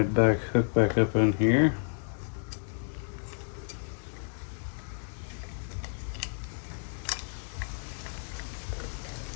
hooked back up in here.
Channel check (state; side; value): silent; right; 57 dB below the other